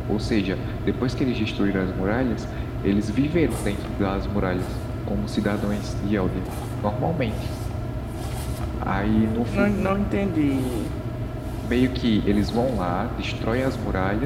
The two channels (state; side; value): identical; both; correlation 1.00